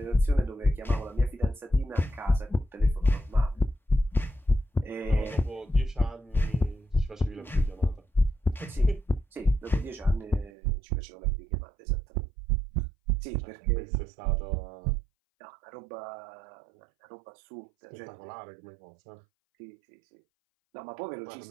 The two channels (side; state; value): left; drops out; at 10.5 s